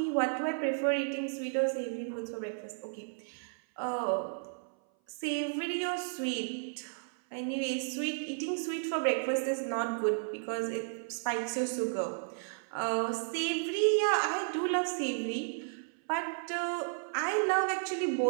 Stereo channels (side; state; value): left; silent; 56 dB below the other